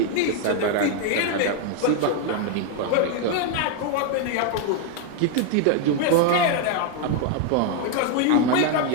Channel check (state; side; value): different; both; correlation 0.00